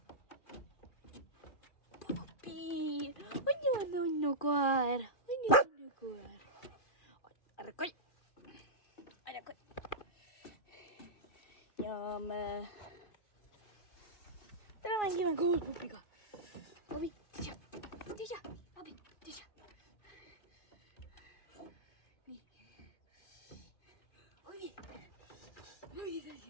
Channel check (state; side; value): late; right; 2.4 ms